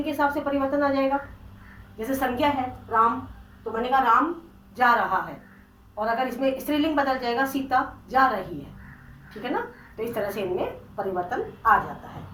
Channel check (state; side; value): identical; both; correlation 1.00